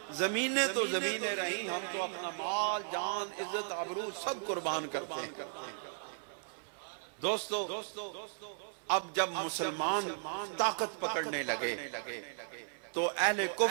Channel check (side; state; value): left; silent; 54 dB below the other